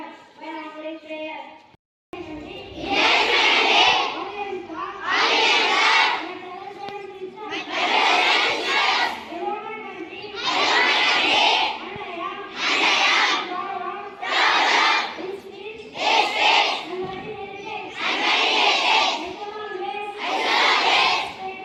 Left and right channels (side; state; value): both; identical; correlation 1.00